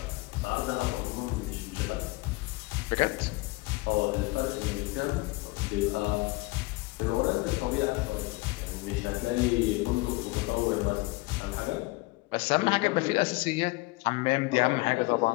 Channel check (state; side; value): quieter; right; 23.4 dB